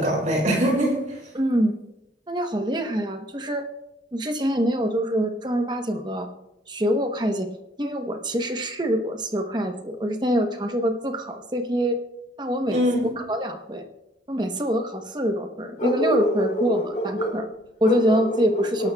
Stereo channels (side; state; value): both; normal; correlation 0.61